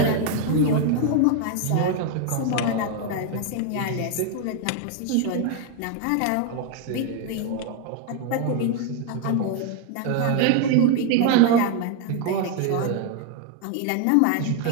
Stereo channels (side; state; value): both; different; correlation 0.01